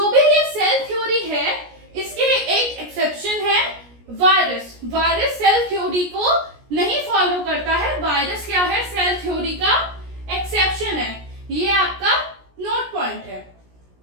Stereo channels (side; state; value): left; late; 17 ms